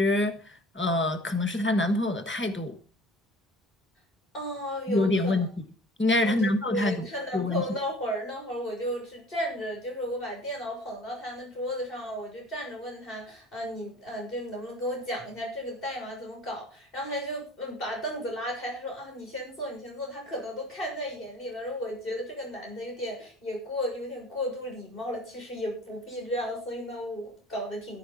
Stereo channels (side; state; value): both; normal; correlation 0.47